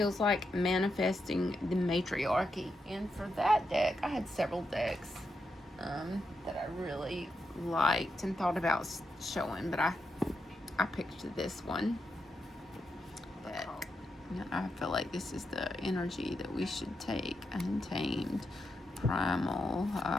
like manifesting the matriarchy. And for that deck, I had several decks that I really liked and thought about showing, but I picked this one. But I feel like this is the energy that we should take. Untamed, primal,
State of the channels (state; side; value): normal; both; correlation 0.84